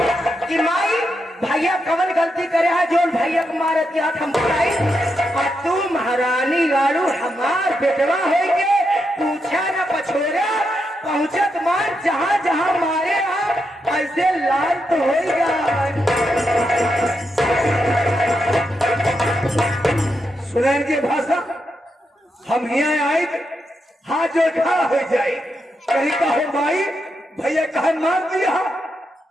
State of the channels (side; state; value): both; normal; correlation 0.84